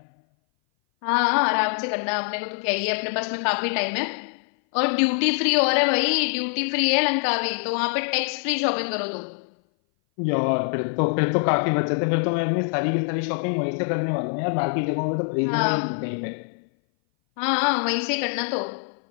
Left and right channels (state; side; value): silent; right; 58 dB below the other